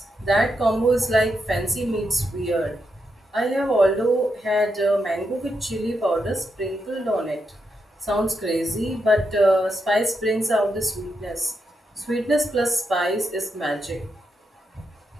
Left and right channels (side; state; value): both; normal; correlation 0.83